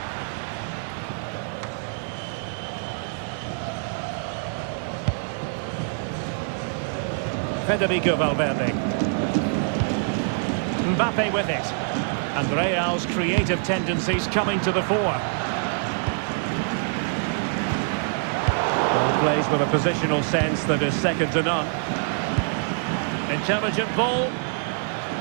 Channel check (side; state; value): left; silent; 62 dB below the other